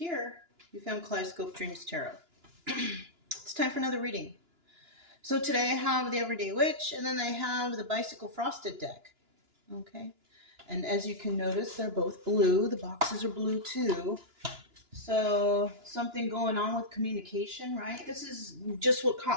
you found Kaleidoscope Dreams Tarot. It's time for another reading. So today I have the Everyday Witch, and then I have the Bicycle Frosted deck. Okay, and as you can notice, they're both blue. The boxes are blue too. So something going on with communication, right? This is just what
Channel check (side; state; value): left; late; 2.9 ms